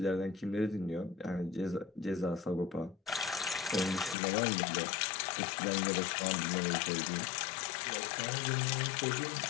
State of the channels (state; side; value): drops out; right; at 4.2 s